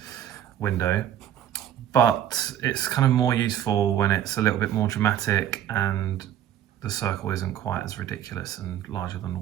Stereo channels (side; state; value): left; quieter; 10.8 dB